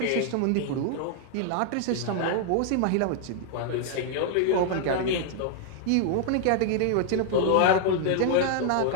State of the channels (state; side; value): different; both; correlation 0.00